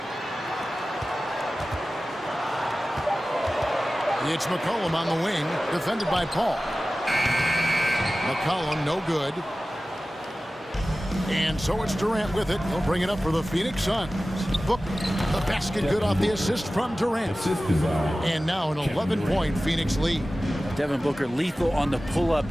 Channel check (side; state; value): both; normal; correlation 0.96